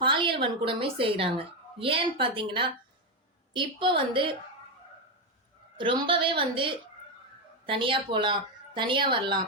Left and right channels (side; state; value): both; normal; correlation 0.08